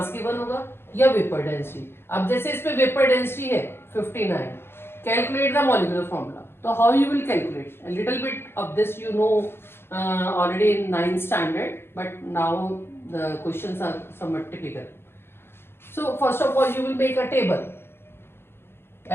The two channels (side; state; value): right; late; 0.11 ms